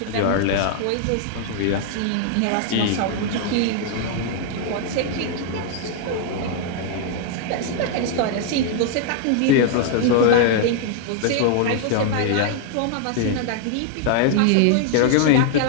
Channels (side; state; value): both; different; correlation 0.00